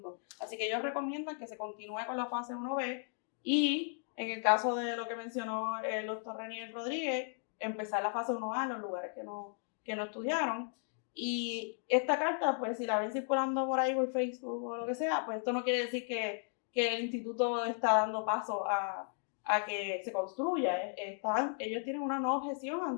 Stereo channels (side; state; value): right; silent; 54 dB below the other